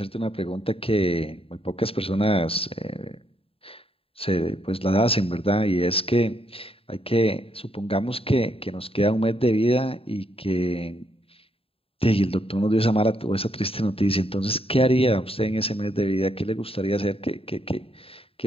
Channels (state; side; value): late; right; 0.27 ms